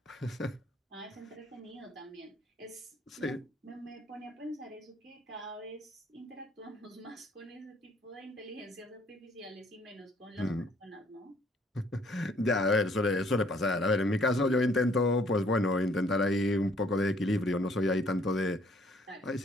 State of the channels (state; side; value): normal; both; correlation 0.62